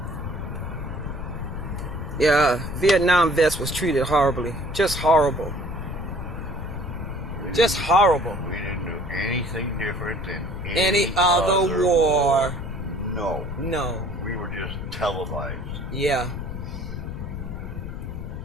Yeah, Vietnam vets was treated horribly. Just horrible. Just horrible. We didn't do anything different than Any other war. No. No. We were just televised. Yeah.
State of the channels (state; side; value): noise; left; rumble, 7 dB below the sound